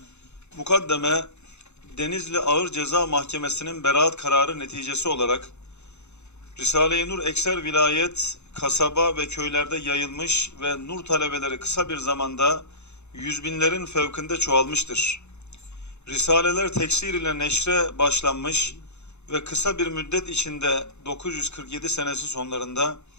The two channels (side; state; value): right; late; 0.82 ms